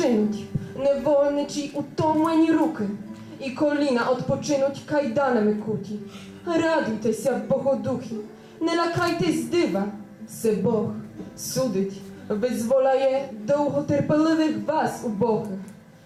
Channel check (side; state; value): both; identical; correlation 1.00